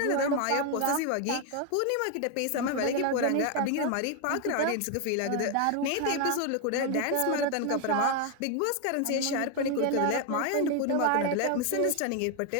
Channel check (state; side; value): different; both; correlation 0.01